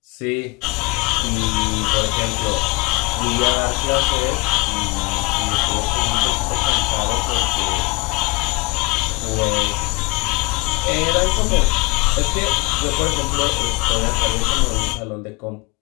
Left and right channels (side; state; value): right; quieter; 26.9 dB